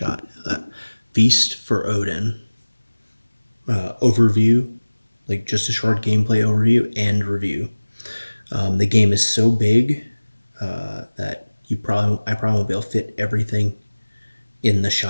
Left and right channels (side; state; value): both; inverted; correlation -1.00